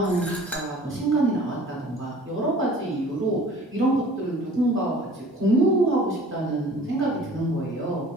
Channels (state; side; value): normal; both; correlation 0.48